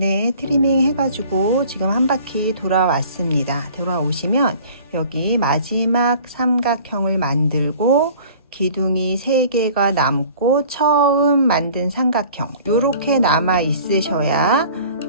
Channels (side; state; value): both; inverted; correlation -0.48